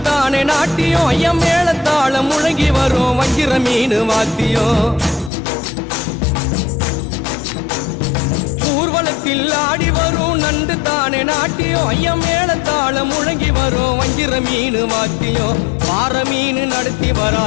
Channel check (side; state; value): right; drops out; at 5.3 s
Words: தானே நாட்டியம் ஐயம் மேளத்தாளம் முழங்கி வரும் வஞ்சிர மீன் வாத்தியம் ஊர்வலத்தில் ஆடி வரும் நண்டு தானே நாட்டியம் ஐயம் மேளத்தாளம் முழங்கி வரும் வஞ்சிர மீன் வாத்தியம் பாறை மீன் நடத்தி